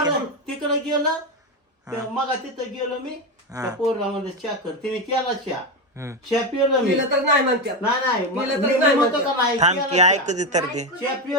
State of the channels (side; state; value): both; normal; correlation 0.13